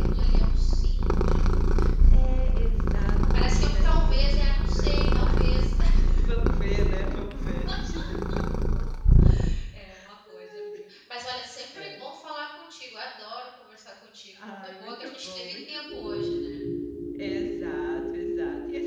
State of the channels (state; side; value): identical; both; correlation 1.00